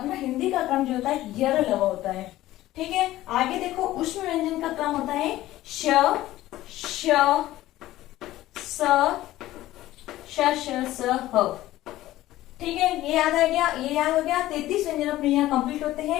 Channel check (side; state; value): right; quieter; 15.5 dB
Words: हिंदी का क्रम जो होता है यर ल होता है। ठीक है, आगे देखो उष्म व्यंजन का क्रम होता है श, श, स, श, स, ह। ठीक है, ये याद आ गया, ये याद हो गया। 33 व्यंजन अपने यहाँ कंप्लीट होते